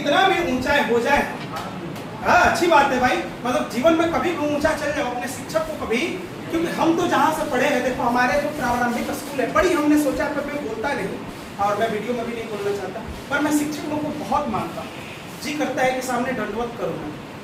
भी ऊंचाई हो जाए। हाँ अच्छी बात है भाई, मतलब जीवन में कभी भी ऊंचा चल जाओ अपने शिक्षक को कभी, क्योंकि हम तो जहाँ से पढ़े हैं, देखो हमारे जो प्रारंभिक स्कूल है, बड़ी हमने सोचा पर मैं बोलता नहीं और मैं वीडियो में भी नहीं बोलना चाहता, पर मैं शिक्षकों को बहुत मानता हूँ। जी करता है कि सामने दंडवत करूँ।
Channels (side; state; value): both; identical; correlation 1.00